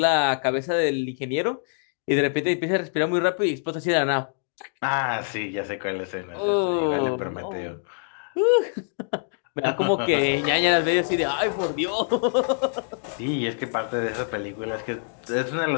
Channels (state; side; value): silent; right; 62 dB below the other